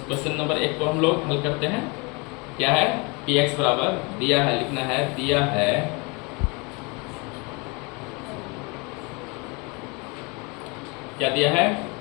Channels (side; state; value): right; quieter; 29.3 dB